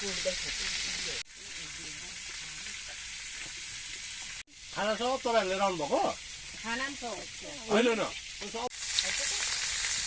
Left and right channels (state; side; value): identical; both; correlation 1.00